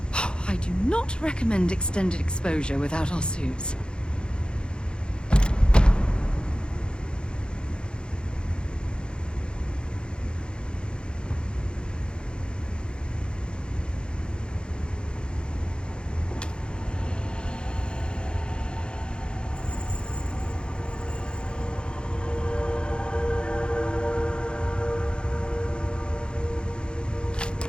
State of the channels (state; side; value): late; right; 0.051 ms